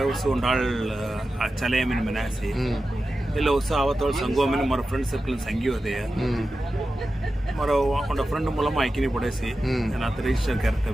नाल चलेमिन मनासी ಇಲ್ಲ ಹೊಸ ಅವತ್ತೋಳು ಸಂಘವನ್ನ ಮರ ಫ್ರೆಂಡ್ ಸರ್ಕಲ್ ಸಂಘಿ ಹೋದೆ ಮರ ಒಂದ ಫ್ರೆಂಡ್ ಮೂಲಮ ಐಕಿನಿ ಪಡೆಸಿ ನಾನು ಅತ ರಿಜಿಸ್ಟರ್ ಕರ್ತೆ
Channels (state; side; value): normal; both; correlation 0.93